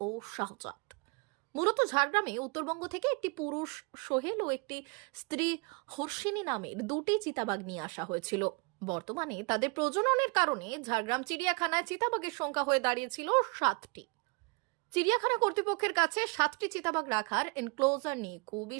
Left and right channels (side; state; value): left; quieter; 31.1 dB